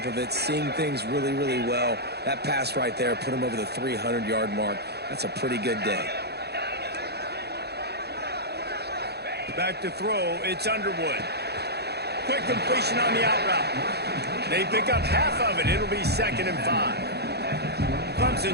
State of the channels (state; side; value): late; left; 0.48 ms